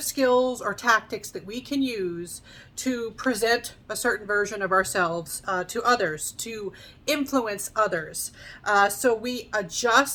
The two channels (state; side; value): identical; both; correlation 1.00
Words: skills or tactics that we can use to present a certain version of ourselves to others, to influence others. So we